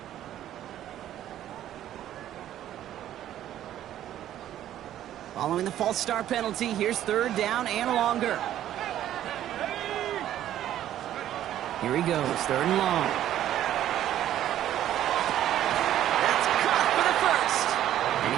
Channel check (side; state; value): left; quieter; 12.0 dB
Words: Following the false start penalty, here's 3rd down and longer. Here he goes, 3rd and long. That's caught for the first. And